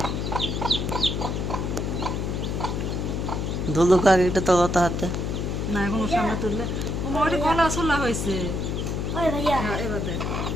ধুলুক আগে একটা তলাতে হাতে না এখনো সামনে তুললে ও মোটামুটি গলা চলা হয়েছে ওই ভাইয়া হ্যাঁ এবার দেখ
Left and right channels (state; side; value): noise; left; hum, 1 dB below the sound